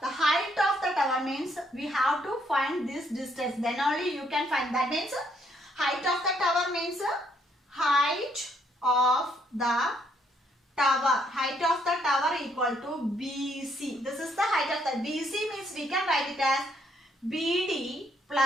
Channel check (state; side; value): normal; both; correlation 0.71